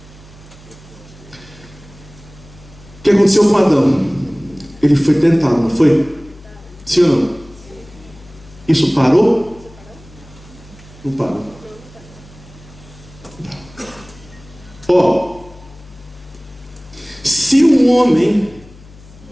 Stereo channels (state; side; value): noise; left; hum, 22 dB below the sound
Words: O que aconteceu com Adão? Ele foi tentado, não foi? Sim ou não? Isso parou? Não parou. Ó, se um homem,